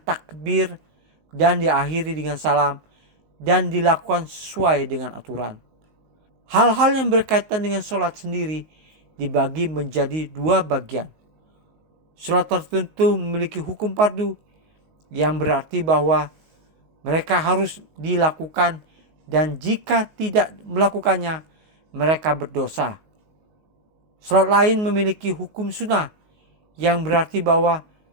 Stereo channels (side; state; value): left; late; 19 ms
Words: dan diakhiri dengan salam dan dilakukan sesuai dengan aturan. Hal-hal yang berkaitan dengan sholat sendiri dibagi menjadi dua bagian. Sholat tertentu memiliki hukum fardu, yang berarti bahwa mereka harus dilakukan, dan jika tidak melakukannya mereka berdosa. Sholat lain memiliki hukum sunnah, yang berarti bahwa